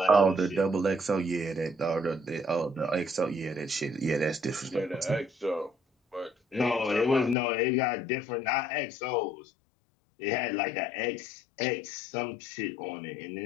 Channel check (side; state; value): right; drops out; at 7.4 s